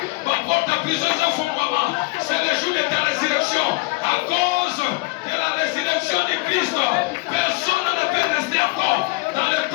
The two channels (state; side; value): quieter; right; 24.2 dB